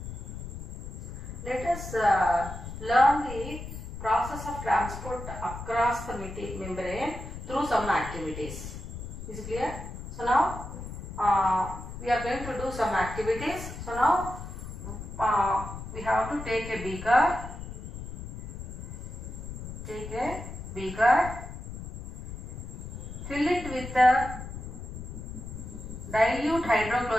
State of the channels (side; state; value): left; noise; rumble, 9 dB below the sound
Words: Let us learn the process of transport across the membrane through some activities. Is it clear? So now we are going to do some activities. So now we have to take a beaker. Fill it with dilute